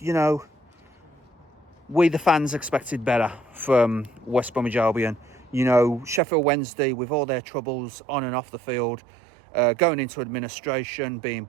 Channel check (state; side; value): drops out; left; at 6.2 s